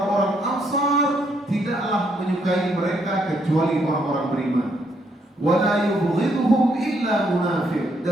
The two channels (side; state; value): both; normal; correlation 0.73